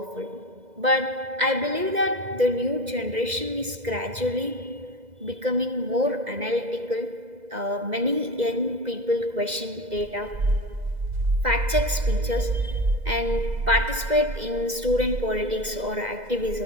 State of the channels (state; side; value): late; left; 2.0 ms